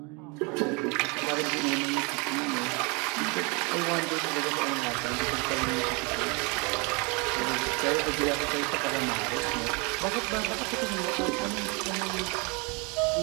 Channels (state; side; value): quieter; left; 30.5 dB